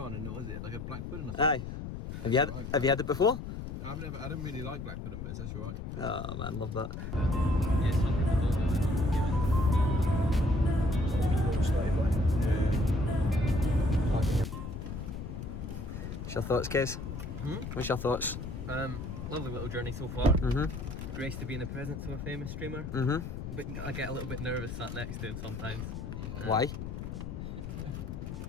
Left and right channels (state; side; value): noise; left; rumble, 7 dB below the sound